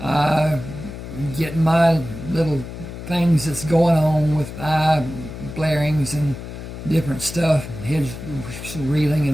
getting my little things that's going on with eye blarings and different stuff, head reeling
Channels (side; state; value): left; noise; hum, 10 dB below the sound